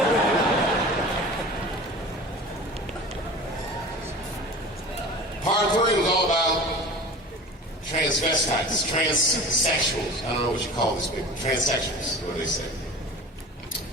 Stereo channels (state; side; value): normal; both; correlation 0.38